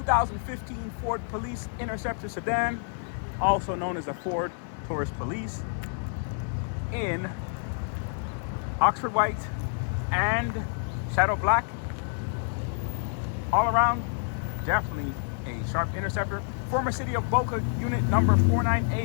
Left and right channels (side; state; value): right; silent; 57 dB below the other